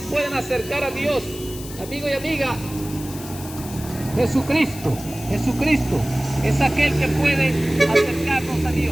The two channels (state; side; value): noise; left; hiss, 14 dB below the sound